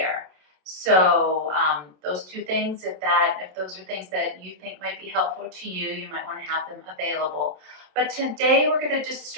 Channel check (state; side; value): late; left; 27 ms